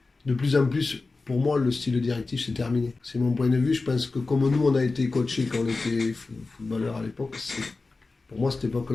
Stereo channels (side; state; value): right; quieter; 3.7 dB